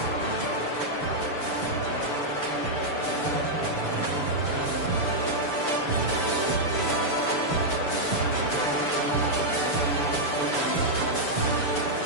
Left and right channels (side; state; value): right; late; 6.9 ms